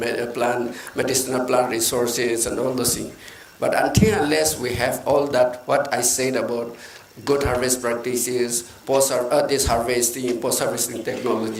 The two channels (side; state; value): both; identical; correlation 1.00